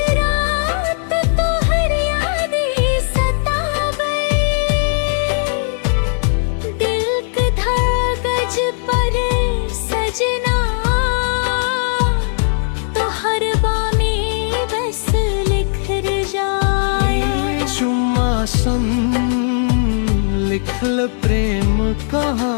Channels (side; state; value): right; silent; digital silence